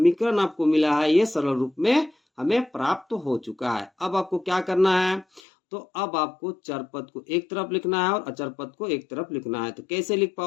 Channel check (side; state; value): right; drops out; at 5.4 s